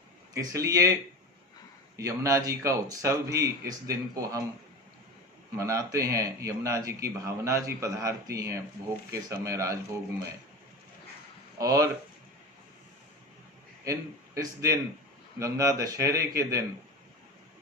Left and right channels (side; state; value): both; normal; correlation 0.27